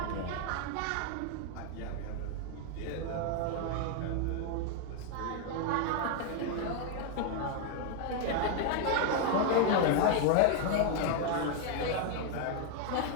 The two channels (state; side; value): different; both; correlation 0.01